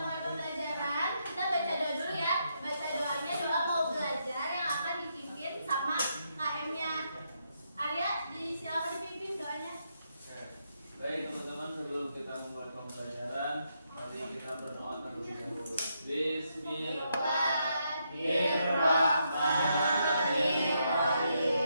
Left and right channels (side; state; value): both; inverted; correlation -0.80